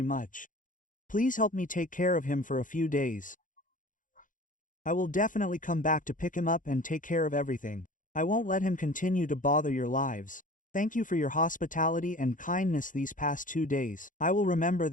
much. Please help me take care of him for a few days. I will definitely come back to pick him up and take care of everything. I won't let him continue to bother your lives. Thank you for your hospitality and kindness these past 2 days. I will remember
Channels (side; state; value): right; late; 0.38 ms